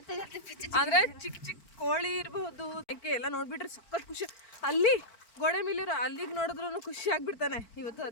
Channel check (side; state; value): right; late; 4.4 ms